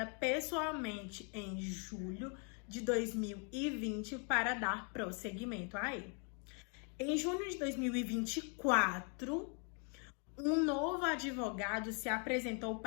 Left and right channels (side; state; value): right; quieter; 38.7 dB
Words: pessoalmente em julho de 2020 para dar prosseguimento a ele. Em junho de 2024, um novo advogado se apresentou